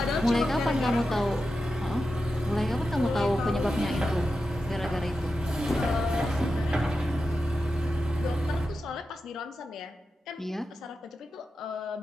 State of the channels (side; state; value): both; normal; correlation 0.90